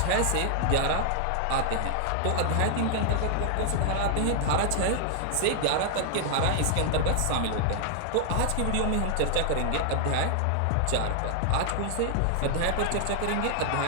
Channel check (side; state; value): both; different; correlation -0.01